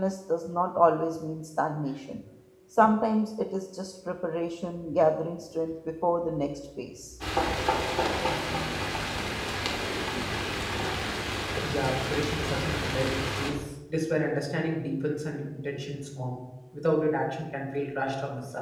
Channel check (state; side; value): identical; both; correlation 1.00